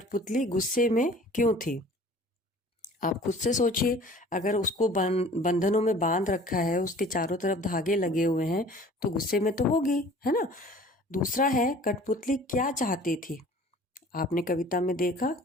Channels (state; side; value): normal; both; correlation 0.48